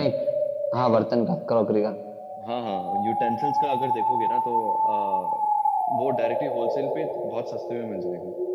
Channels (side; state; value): both; identical; correlation 1.00